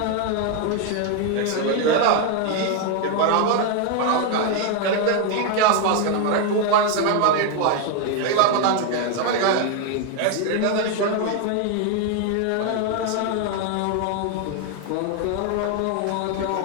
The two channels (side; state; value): both; different; correlation 0.01